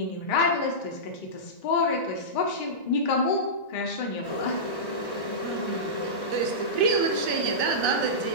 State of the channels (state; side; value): late; right; 1.3 ms